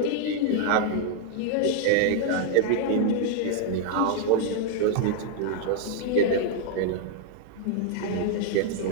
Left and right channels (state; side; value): different; both; correlation 0.00